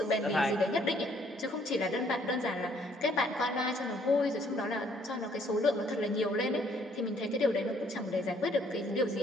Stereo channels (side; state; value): both; normal; correlation 0.64